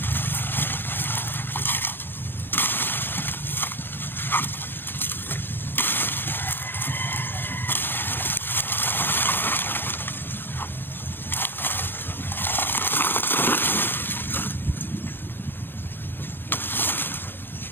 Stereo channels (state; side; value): late; right; 0.10 ms